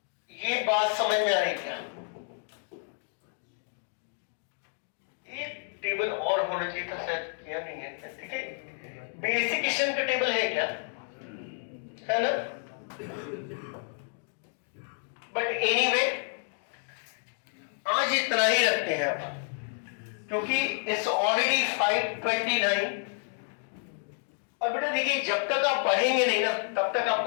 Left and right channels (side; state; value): right; silent; 57 dB below the other